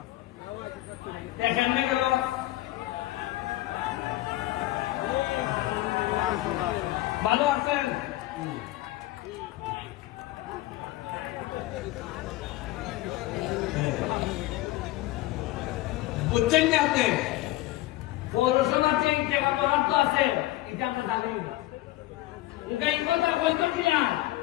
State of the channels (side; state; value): right; quieter; 17.2 dB